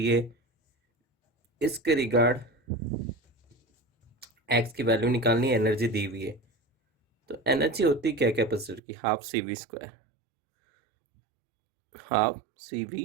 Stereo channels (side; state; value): left; drops out; at 8.8 s